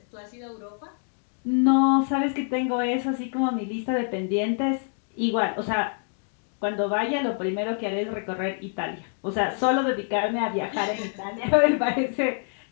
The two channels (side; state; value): right; silent; 56 dB below the other